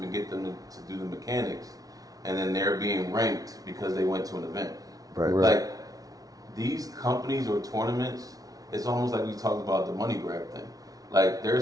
get them to do the mechanics, and then they're being ranked because they went to an event. Right. Like, these companies or tournaments, it's almost like we talked about the money grab thing. Like, they're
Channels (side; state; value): left; late; 0.18 ms